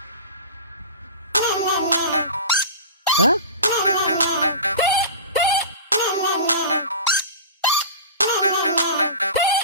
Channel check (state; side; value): inverted; both; correlation -0.33